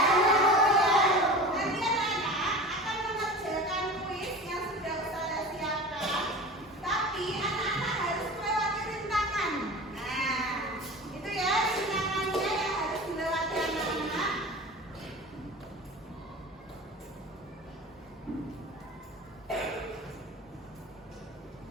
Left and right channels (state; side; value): normal; both; correlation 0.35